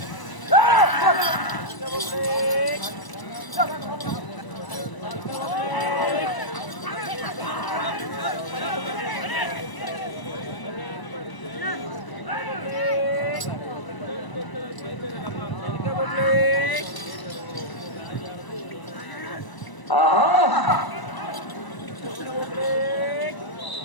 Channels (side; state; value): right; late; 1.0 ms